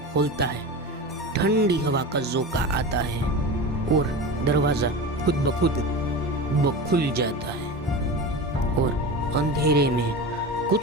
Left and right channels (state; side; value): normal; both; correlation 0.28